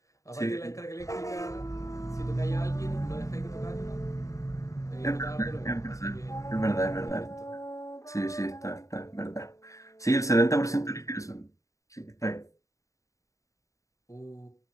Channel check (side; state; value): right; late; 0.16 ms